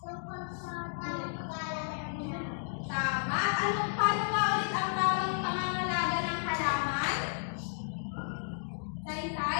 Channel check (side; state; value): right; silent; digital silence